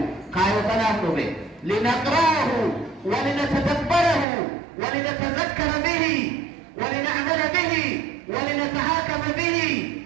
kaayoo kanaaf dhufe linaqra'ahu walinatadabbarahu walinatazakkara bihi walina'mala bihi walinatahakama bihi.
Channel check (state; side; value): drops out; left; at 4.2 s